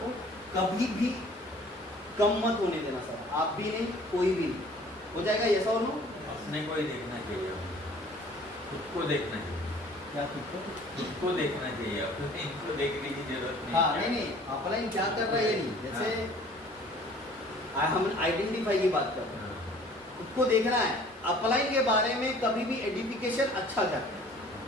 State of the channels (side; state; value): both; normal; correlation 0.51